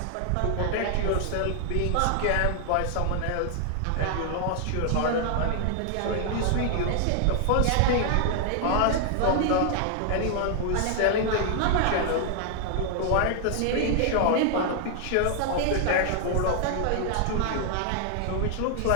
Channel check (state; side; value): different; both; correlation 0.00